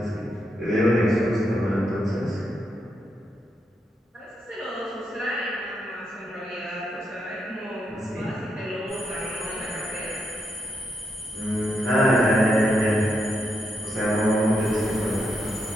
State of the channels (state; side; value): normal; both; correlation 0.81